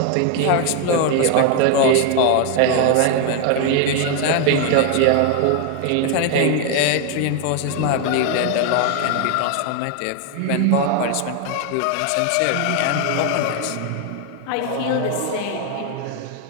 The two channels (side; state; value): both; different; correlation 0.01